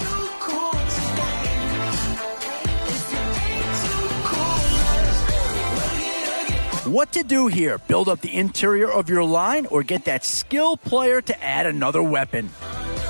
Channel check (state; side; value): inverted; both; correlation -1.00